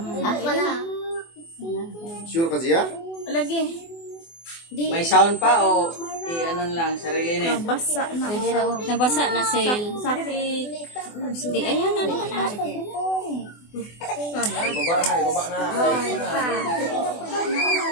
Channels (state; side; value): late; right; 24 ms